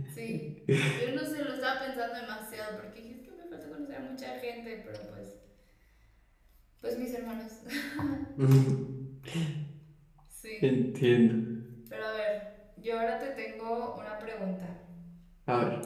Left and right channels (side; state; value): both; identical; correlation 1.00